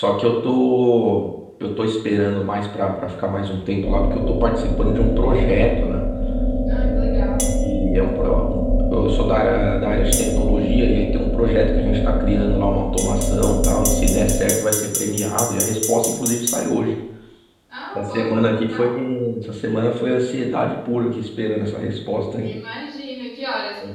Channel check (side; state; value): both; identical; correlation 1.00